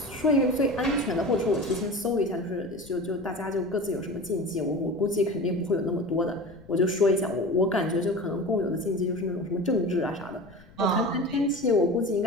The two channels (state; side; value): noise; left; rumble, 24 dB below the sound